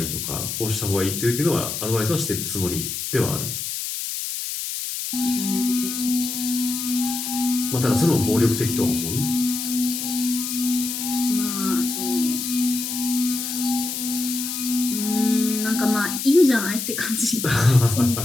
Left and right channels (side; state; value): left; noise; hiss, 4 dB below the sound